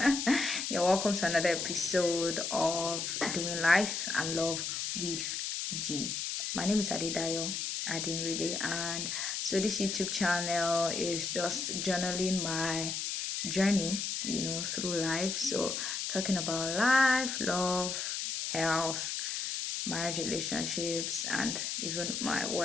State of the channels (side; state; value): left; noise; hiss, 2 dB below the sound